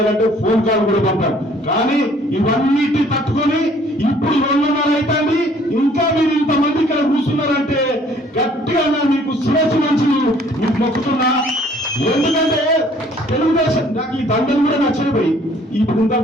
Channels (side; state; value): both; normal; correlation 0.58